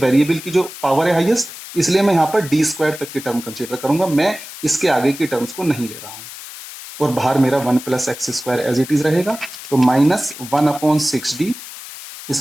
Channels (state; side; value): noise; left; hiss, 13 dB below the sound